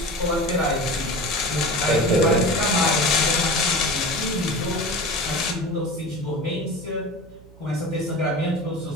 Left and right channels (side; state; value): right; noise; hum, 22 dB below the sound